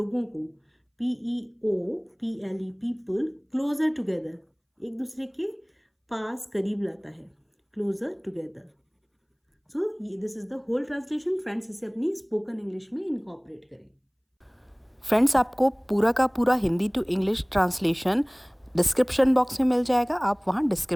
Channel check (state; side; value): identical; both; correlation 1.00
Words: को, PEOPLE, पीपल, क्लोजर टुगेदर, एक दूसरे के पास, करीब लाता है, closer together. So this is the whole translation. Friends, इसे अपनी स्पोकन इंग्लिश में इनकॉर्पोरेट करें। फ्रेंड्स, आपको पूरा का पूरा Hindi to English translation description box में मिल जाएगा, आप वहाँ